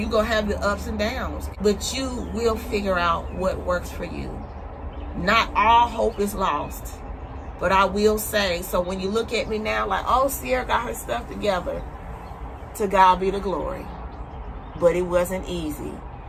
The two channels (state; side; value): identical; both; correlation 1.00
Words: and downs, but you will figure out what works for you. Not all hope is lost, but I will say, so when you look at me now like, oh, Sierra got her stuff together, to God be the glory. But it wasn't easy.